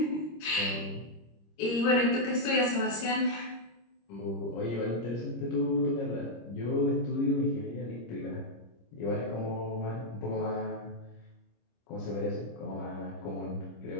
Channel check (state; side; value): late; right; 26 ms